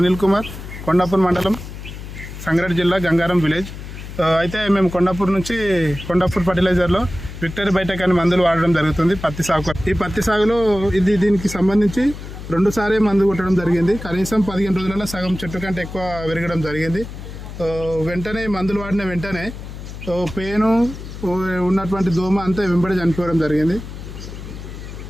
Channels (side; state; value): left; noise; hum, 11 dB below the sound